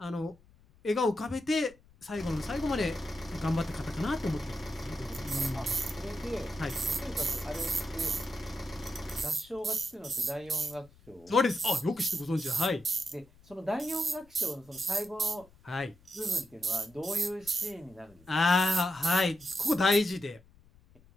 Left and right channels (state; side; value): noise; left; rumble, 27 dB below the sound